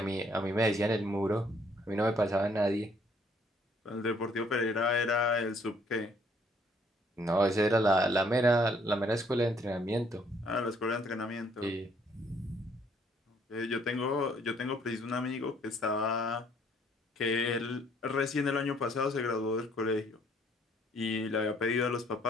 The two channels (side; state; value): both; normal; correlation 0.64